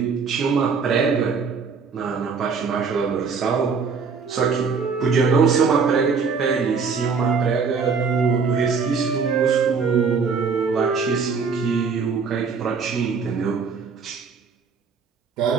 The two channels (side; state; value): left; quieter; 5.4 dB